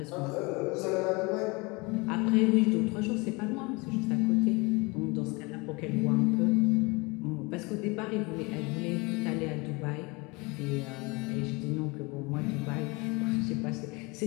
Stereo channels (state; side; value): quieter; right; 26.5 dB